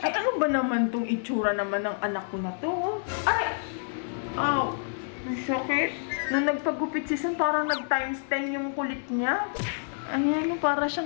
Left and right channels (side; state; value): right; silent; digital silence